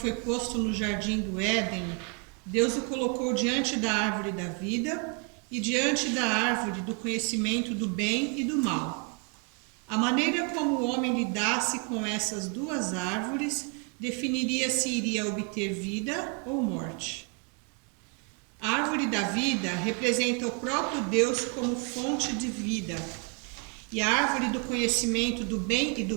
posto no jardim do Éden, Deus o colocou diante da árvore da vida e diante da árvore do conhecimento do bem e do mal. A maneira como o homem lidasse com essas duas árvores definiria se iria obter vida ou morte. A árvore da vida representa o próprio Deus como fonte de vida, e a árvore do conhecimento do bem e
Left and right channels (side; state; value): left; quieter; 32.6 dB